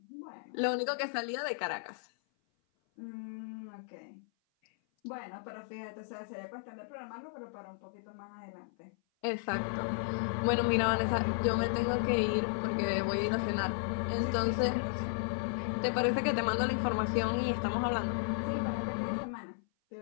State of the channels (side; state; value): right; silent; 55 dB below the other